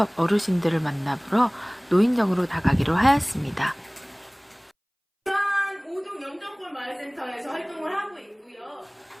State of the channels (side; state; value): both; identical; correlation 1.00